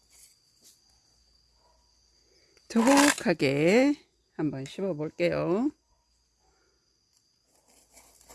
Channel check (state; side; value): identical; both; correlation 1.00